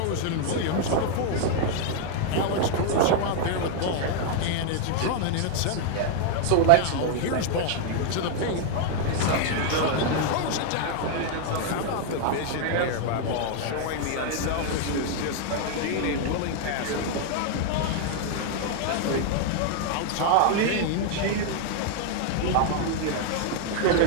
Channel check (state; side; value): different; both; correlation 0.00